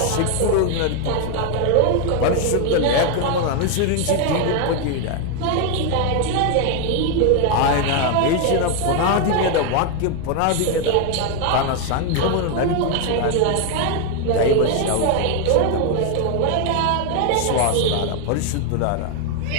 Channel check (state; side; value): different; both; correlation 0.01